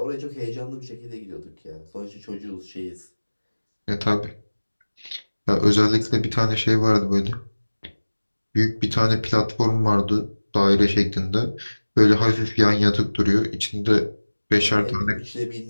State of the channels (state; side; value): inverted; both; correlation -1.00